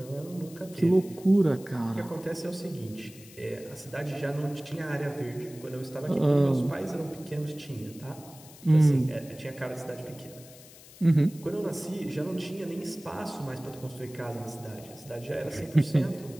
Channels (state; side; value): noise; left; hiss, 20 dB below the sound